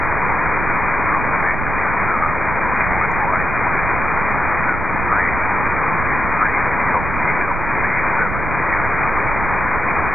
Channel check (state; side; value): noise; right; rumble, 5 dB below the sound